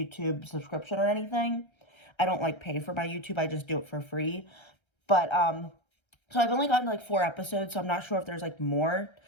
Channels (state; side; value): late; right; 1.3 ms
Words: subscription or anything. I don't like pay for my YouTube. I just do it for free. But, so I've only gotten like 4 episodes, so I'm not sure if there's like more